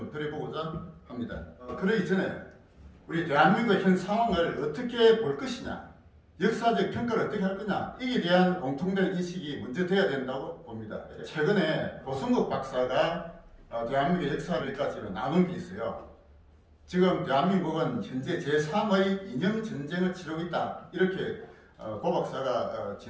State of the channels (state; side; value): identical; both; correlation 1.00